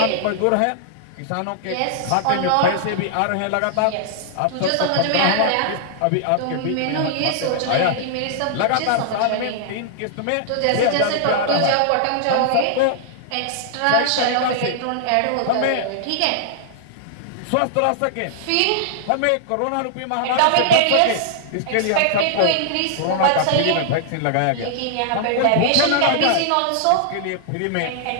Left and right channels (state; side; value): different; both; correlation -0.01